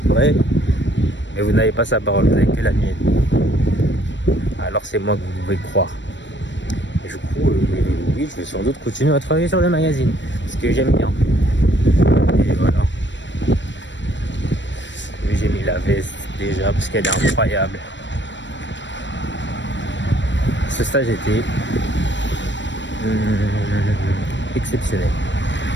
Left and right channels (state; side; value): late; right; 0.53 ms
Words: vrai, mais vous n'avez pas sa parole, vous n'avez que la mienne. Alors c'est moi que vous pouvez croire. Et du coup, oui, je vais sans doute continuer à travailler sur le magazine, parce que j'aime bien. Et voilà. J'ai mis la veste déjà parce qu'elle est incroyable. Ce stage était exceptionnel.